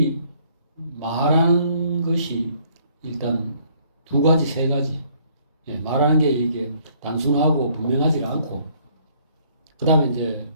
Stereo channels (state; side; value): inverted; both; correlation -0.63